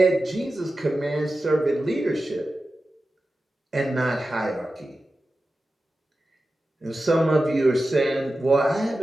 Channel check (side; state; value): both; normal; correlation 0.93